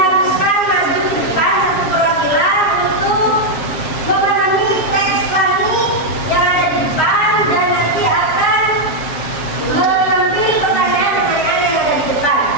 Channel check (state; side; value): late; right; 7.4 ms